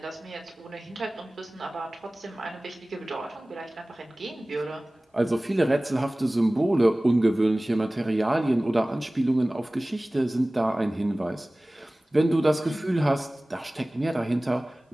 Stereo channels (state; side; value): normal; both; correlation 0.98